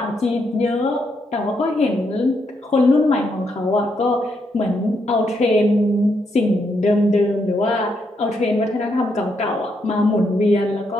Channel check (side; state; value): both; normal; correlation 0.78